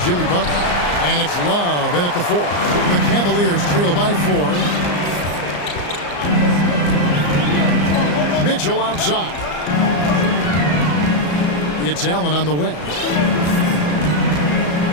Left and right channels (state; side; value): late; right; 34 ms